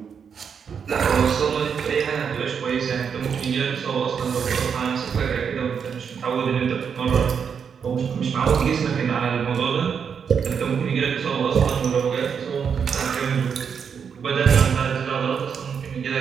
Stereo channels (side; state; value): left; quieter; 6.9 dB